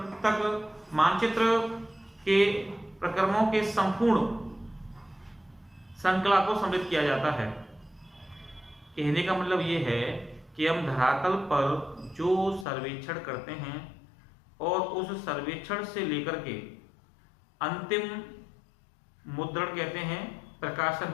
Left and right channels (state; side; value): drops out; right; at 12.7 s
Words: तक मानचित्र के प्रक्रमों के संपूर्ण श्रृंखला को सम्मिलित किया जाता है। कहने का मतलब ये है कि हम धरातल पर जो सर्वेक्षण करते हैं और उस सर्वेक्षण से लेकर के अंतिम मुद्रण कहते हैं प्रकाशन